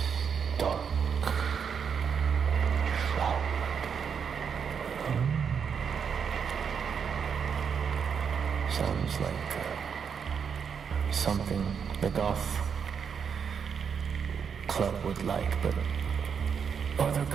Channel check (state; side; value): quieter; left; 6.8 dB